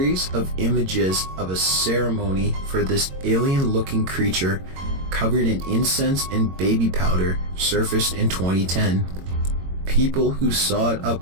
of images of a ceremony for this alien-looking creature covered in incense and baby powder surfaced in 2010. People who saw it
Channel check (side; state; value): left; late; 22 ms